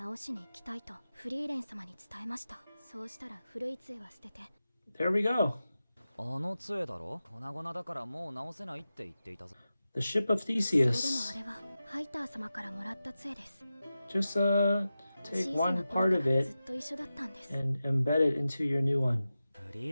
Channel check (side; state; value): both; inverted; correlation -0.93